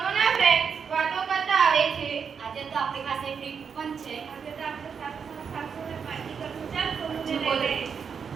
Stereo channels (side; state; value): left; quieter; 6.5 dB